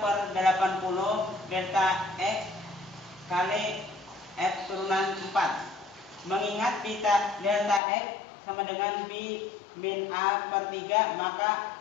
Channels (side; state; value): right; drops out; at 7.8 s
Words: delta X kali F turunan 4. Mengingat delta X sama dengan B min A/3,